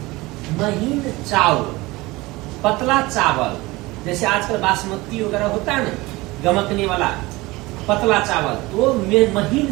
महीन चावल, पतला चावल, जैसे आजकल बासमती वगैरह होता है ना, गमकने वाला पतला चावल, तो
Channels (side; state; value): left; quieter; 21.2 dB